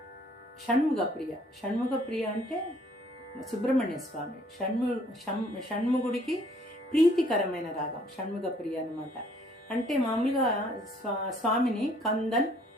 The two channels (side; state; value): both; normal; correlation 0.61